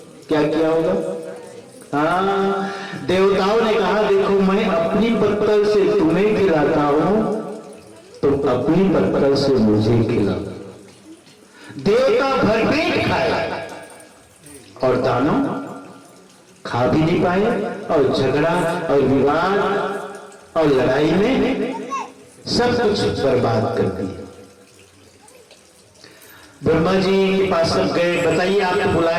क्या किया होगा? हाँ, देवताओं ने कहा देखो मैं अपनी पत्तल से तुम्हें खिलाता हूं, तुम अपनी पत्तल से मुझे खिलाओ। देवता भरपेट खाए और दानव खा भी नहीं पाए, और झगड़ा और विवाद और लड़ाई में सब कुछ बर्बाद कर दिया। ब्रह्मा जी के पास सब गए, बताइए आपको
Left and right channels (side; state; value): both; identical; correlation 1.00